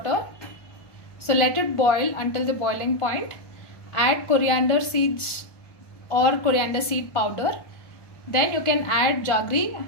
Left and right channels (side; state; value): right; late; 1.2 ms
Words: So let it boil until the boiling point. Add coriander seeds or coriander seed powder. Then you can add jaggery